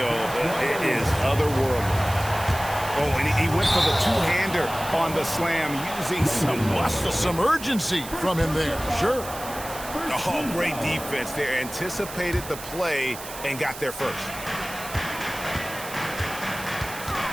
is otherworldly. Oh, and he went for the two-hander on the slam using some muscle. Some urgency from him there, sure. Oh, great defense there. Anticipated the play and got there first.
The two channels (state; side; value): noise; right; hiss, 12 dB below the sound